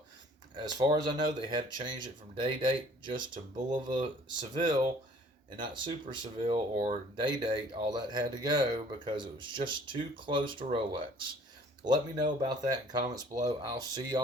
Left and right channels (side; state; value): both; normal; correlation 0.54